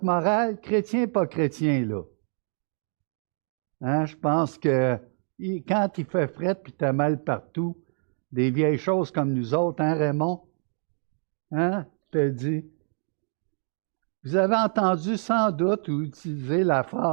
morale, chrétien, pas chrétien, là? Hein? Je pense que quand il fait frette puis t'as mal partout, des vieilles choses comme nous autres, hein, Raymond? Hein? Je te dis. Vous avez entendu sans doute ou utilisé la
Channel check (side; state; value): left; silent; 57 dB below the other